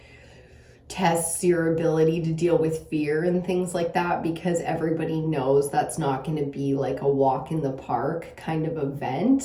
tests your ability to deal with fear and things like that, because everybody knows that's not going to be like a walk in the park kind of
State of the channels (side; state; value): both; identical; correlation 1.00